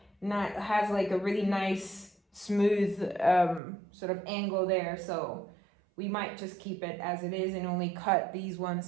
not has like a really nice smooth sort of angle there, so we might just keep it as it is and only cut these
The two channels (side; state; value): left; drops out; at 3.6 s